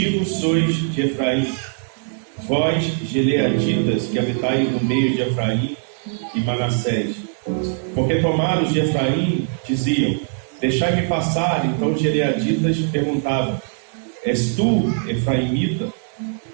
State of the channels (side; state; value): left; silent; 63 dB below the other